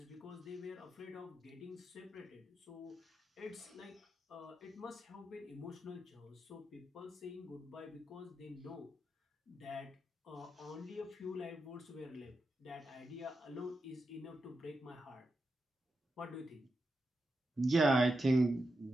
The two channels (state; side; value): normal; both; correlation 0.88